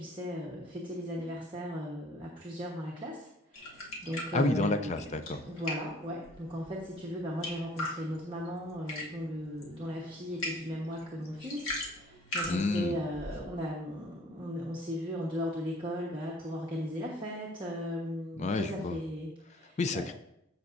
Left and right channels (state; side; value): normal; both; correlation 0.55